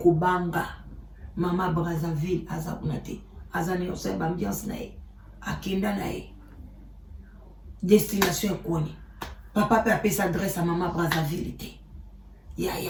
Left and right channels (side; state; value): both; identical; correlation 1.00